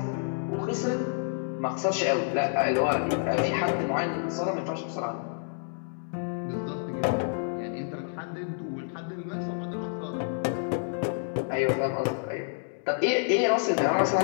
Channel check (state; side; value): silent; right; digital silence